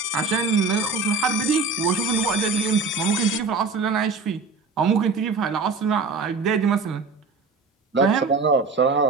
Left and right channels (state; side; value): quieter; left; 4.2 dB